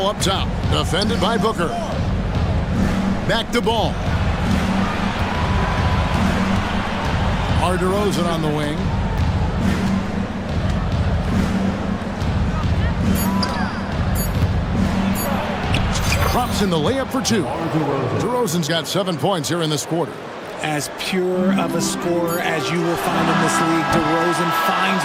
up top, defended by Booker. Back to Ball. DeRozan on the wing. Drops in the layup for 2. DeRozan's got 7 points here in this quarter. As pure of a scorer as you will find in this league, DeRozan finds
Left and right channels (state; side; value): identical; both; correlation 1.00